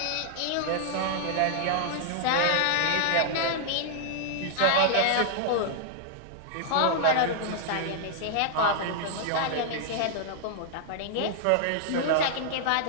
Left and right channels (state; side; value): different; both; correlation -0.01